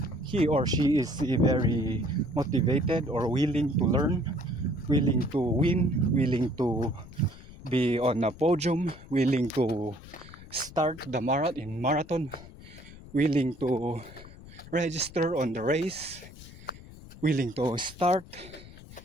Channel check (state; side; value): noise; left; rumble, 18 dB below the sound